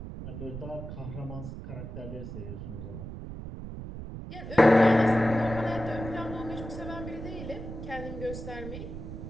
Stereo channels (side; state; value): right; noise; rumble, 9 dB below the sound